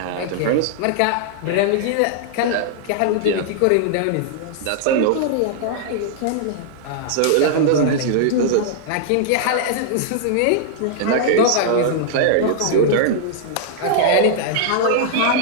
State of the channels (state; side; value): different; both; correlation -0.01